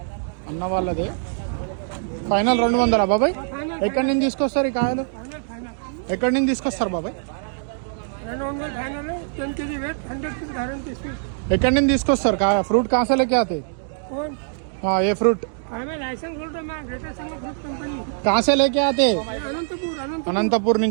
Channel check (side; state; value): left; silent; digital silence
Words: అన్న వాళ్ళదే ఫైనల్ 200 బాబాయ్. ఎక్కడి నుంచి తీసుకొస్తారు ఈ కాయలు? ఎక్కడి నుంచి తీసుకొస్తారు బాబాయ్? ఎక్కడి నుంచి తీసుకొస్తారు కాయ? ఫ్రూట్ కాసే లేకే ఆతే? ఏ ఫ్రూట్ కాసే లేకే ఆతే? అనంతపూర్